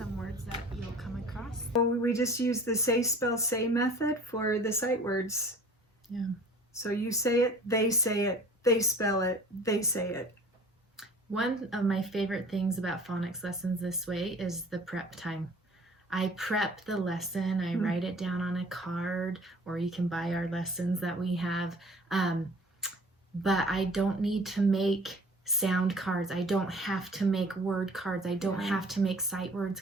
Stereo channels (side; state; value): both; normal; correlation 0.48